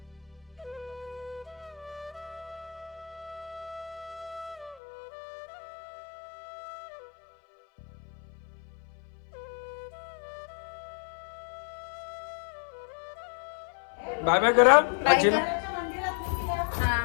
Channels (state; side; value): drops out; right; at 4.8 s